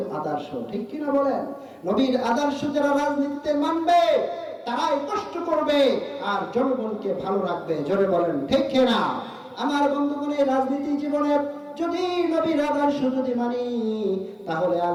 আদর্শ, ঠিক কিনা বলেন? নবীর আদর্শ যারা রাজনীতিতে মানবে তারাই কষ্ট করবে আর জনগণকে ভালো রাখবে। জোরে বলেন ঠিক কিনা? আমার বন্ধুগণ, এই রাজনীতি জীবনে যদি নবীর আদর্শ যদি মানি, তাহলে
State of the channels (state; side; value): identical; both; correlation 1.00